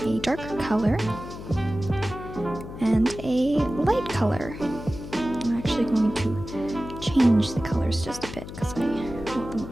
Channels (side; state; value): left; noise; hum, 11 dB below the sound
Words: a darker color, and a light color. I'm actually going to change the colors just a bit because I want them